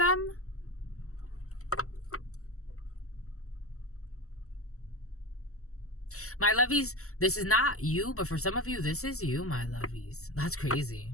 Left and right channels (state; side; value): late; right; 0.64 ms